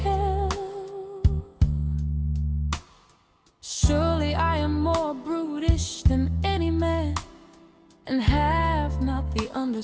Surely I am more brutish than any man, and have not the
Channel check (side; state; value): both; identical; correlation 1.00